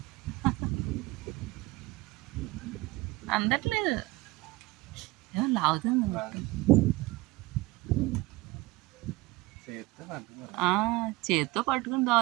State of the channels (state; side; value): quieter; left; 21.1 dB